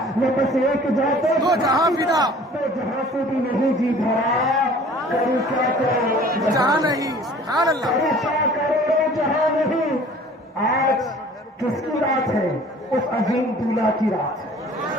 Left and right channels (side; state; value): both; normal; correlation 0.49